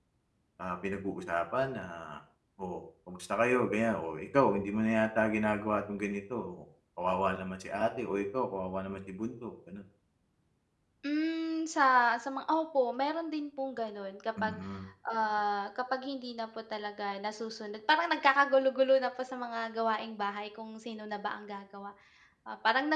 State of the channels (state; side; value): identical; both; correlation 1.00